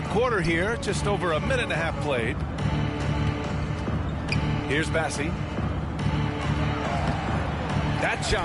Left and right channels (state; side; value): identical; both; correlation 1.00